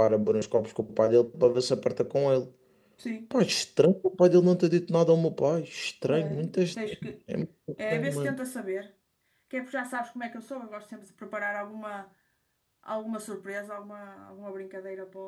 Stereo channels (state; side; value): identical; both; correlation 1.00